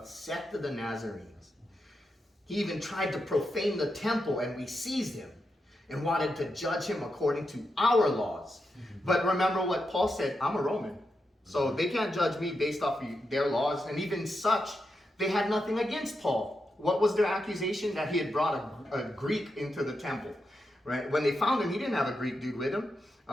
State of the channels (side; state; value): both; normal; correlation 0.86